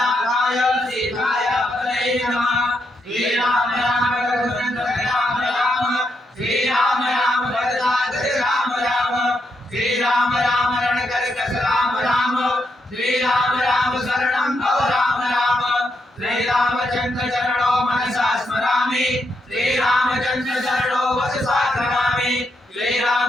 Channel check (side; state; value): both; normal; correlation 0.81